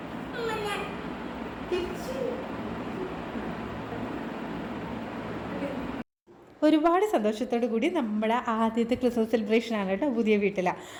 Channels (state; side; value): identical; both; correlation 1.00